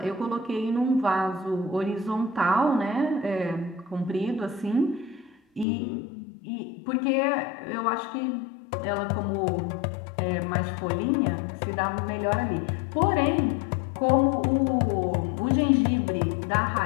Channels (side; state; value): right; drops out; at 5.7 s